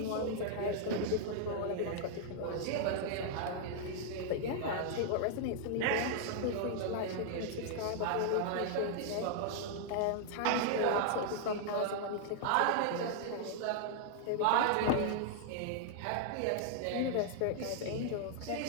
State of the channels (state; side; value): different; both; correlation -0.01